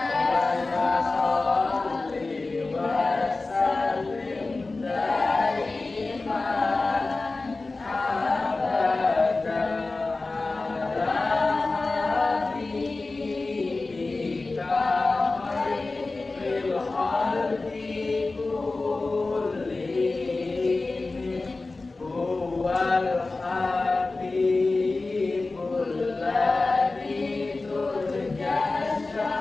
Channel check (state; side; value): quieter; right; 3.4 dB